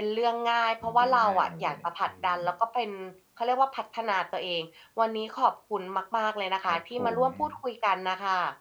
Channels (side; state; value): both; identical; correlation 1.00